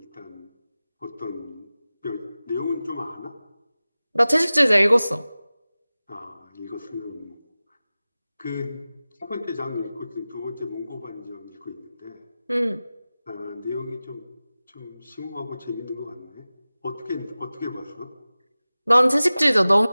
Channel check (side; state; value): both; inverted; correlation -0.97